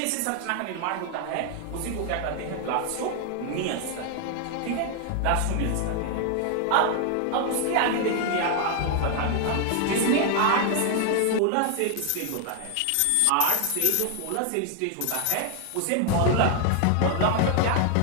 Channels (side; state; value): both; different; correlation 0.00